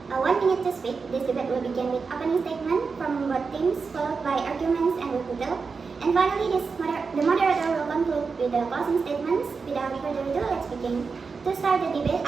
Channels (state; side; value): quieter; left; 4.9 dB